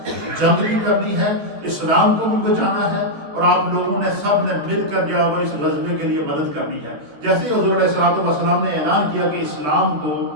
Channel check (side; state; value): left; late; 14 ms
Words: جنگ بھی کرنی ہے، اسلام کو بھی بچانا ہے، اور آپ لوگوں نے سب نے مل کر جو ہے اس غزوے کے لیے مدد کرنی ہے۔ جیسے ہی حضور علیہ الصلوۃ والسلام نے اعلان کیا کہ اسلام کو